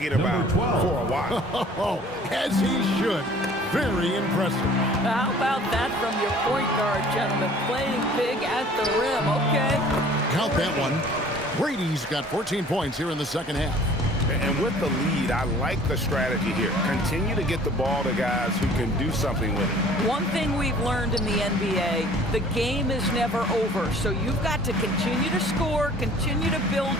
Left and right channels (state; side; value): normal; both; correlation 0.51